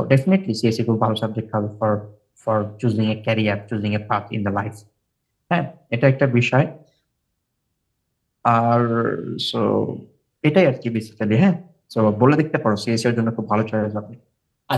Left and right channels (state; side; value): identical; both; correlation 1.00